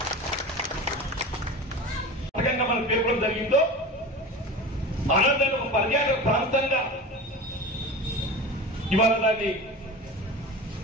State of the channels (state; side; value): normal; both; correlation 0.31